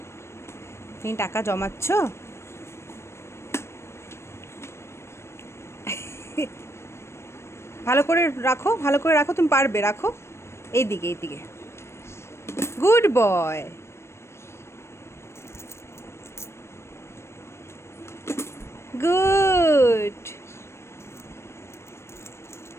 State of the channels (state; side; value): late; right; 0.13 ms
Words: তুমি টাকা জমাচ্ছ? ভালো করে রাখো, ভালো করে রাখো, তুমি পারবে, রাখো। এইদিকে, এইদিকে। Good boy. গুড।